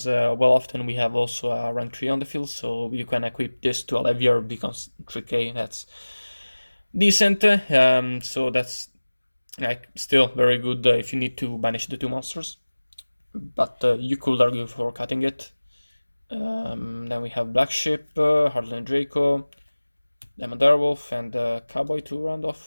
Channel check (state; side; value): inverted; both; correlation -1.00